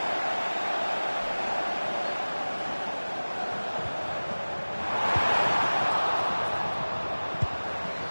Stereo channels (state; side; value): inverted; both; correlation -1.00